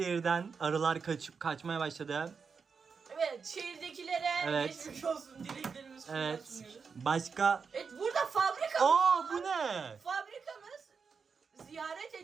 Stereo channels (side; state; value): left; quieter; 5.6 dB